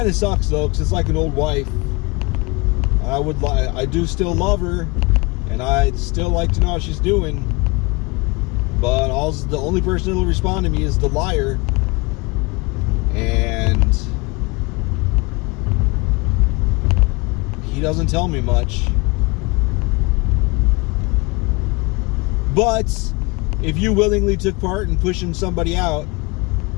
of sucks, though, because it's like an old wife. I do still love her, and I'd still like to know how she's doing. But the only person that'll respond to me is the liar. And he doesn't tell me much. But if you willingly took part in pushing somebody out,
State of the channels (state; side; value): quieter; right; 26.6 dB